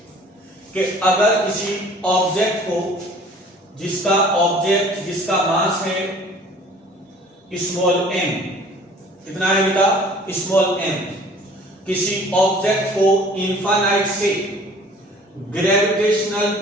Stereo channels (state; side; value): normal; both; correlation 0.50